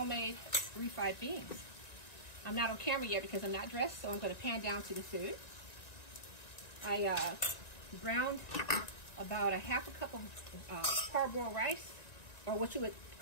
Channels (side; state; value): right; late; 1.9 ms